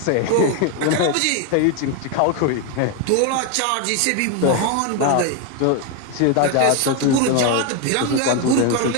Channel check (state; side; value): different; both; correlation 0.01